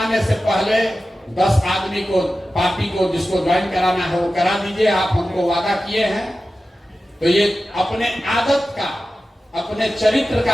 से पहले 10 आदमी को, पार्टी को जिसको ज्वाइन कराना है वो करा दीजिए। आप हमको वादा किए हैं, तो ये अपने आदत का, अपने चरित्र का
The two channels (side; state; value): both; normal; correlation 0.94